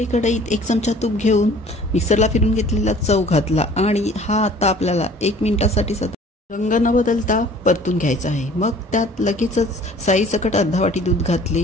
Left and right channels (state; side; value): normal; both; correlation 0.51